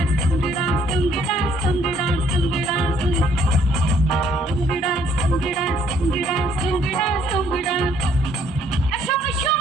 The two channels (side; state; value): both; normal; correlation 0.64